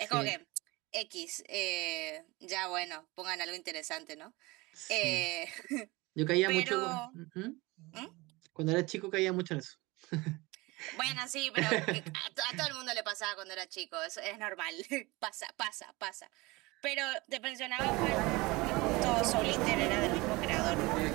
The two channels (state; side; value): quieter; left; 22.8 dB